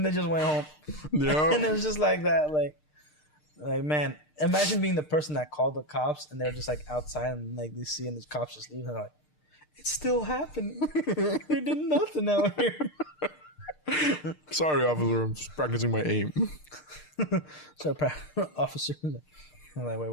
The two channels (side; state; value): right; late; 6.6 ms